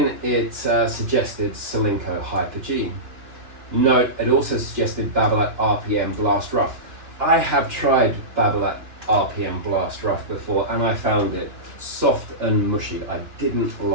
it suggested Solinco Hyper G. Note, it also suggested Babolat RPM Blast Rough. I have tried Babolat RPM Blast Rough before, and I found it soft and mushy. I didn't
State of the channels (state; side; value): late; left; 2.9 ms